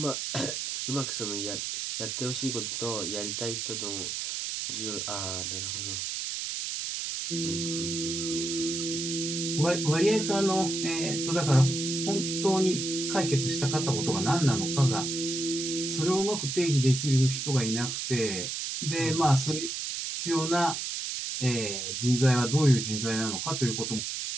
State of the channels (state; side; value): noise; right; hiss, 3 dB below the sound